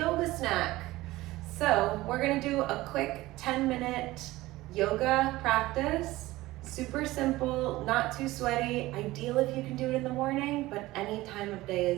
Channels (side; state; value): left; quieter; 18.2 dB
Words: snack. So we're gonna do a quick 10-minute yoga practice. Super simple, not too sweaty. Ideal if you can do it in the morning, but any time of day